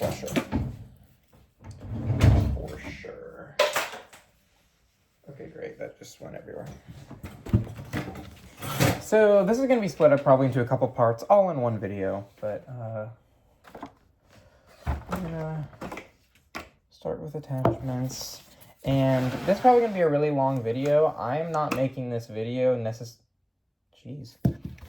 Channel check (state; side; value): identical; both; correlation 1.00